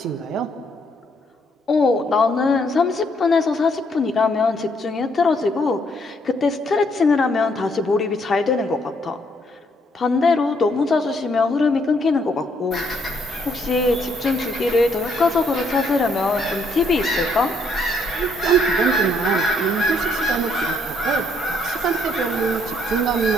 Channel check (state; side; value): normal; both; correlation 0.70